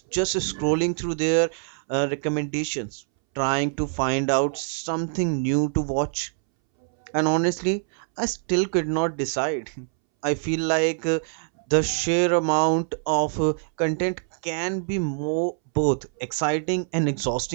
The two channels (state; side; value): silent; left; 62 dB below the other